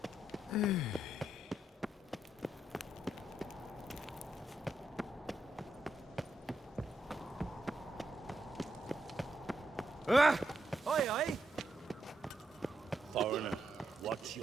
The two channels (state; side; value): normal; both; correlation 0.82